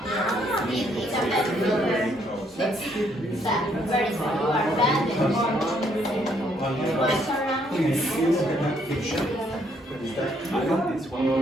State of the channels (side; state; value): both; normal; correlation 0.70